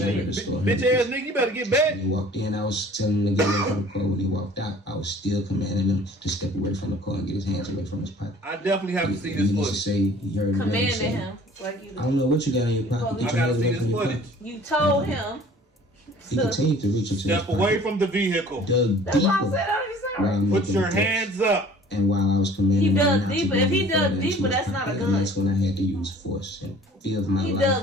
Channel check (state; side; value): normal; both; correlation 0.50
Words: out shit. of the store. Bitch ass nigga, you better get back. When he walked in, I was telling him to get away from the car. When he walked out, I was still commanding him to step away from the car and get his hands away from his pocket. I definitely have to see He this needs to footage. say he heard the man Commanding say, him. Like you I don't know what you got in your pocket. Get I your gotta hands see away this from your footage. pocket. You told him. He continued to reach into his Step away pocket, from the vehicle. dug That's why I deeper said I while was I'm Put making your the threats. hands up. And while I was commanding He him dug not to deeper. go If he any dug further into deeper, his that's not a pocket, gun. and that's when I had to use force and fear of my He life.